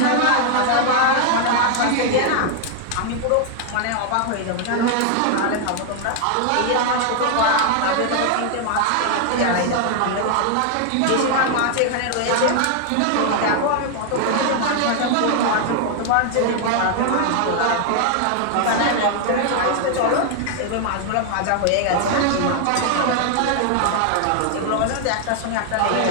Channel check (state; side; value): different; both; correlation 0.00